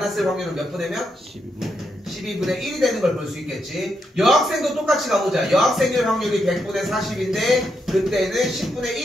확률은 몇 분의 몇? 12분의 1이 되는 걸 볼 수 있겠지. 여학생도 똑같이 가보자. 여학생일 확률이 100분의 40인데 그때는 10분의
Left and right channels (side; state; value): both; normal; correlation 0.81